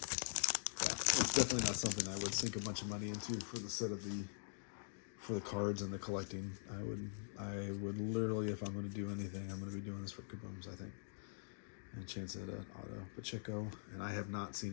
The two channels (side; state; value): right; silent; digital silence